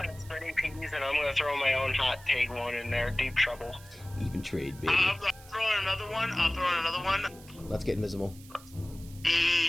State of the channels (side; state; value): right; noise; hiss, 21 dB below the sound